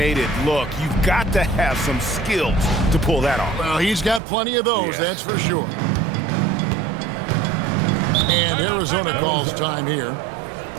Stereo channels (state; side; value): drops out; left; at 4.2 s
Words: it look. You've got to have some skills to pull that off. Well, he's got plenty of those, that's for sure. And Arizona calls time here.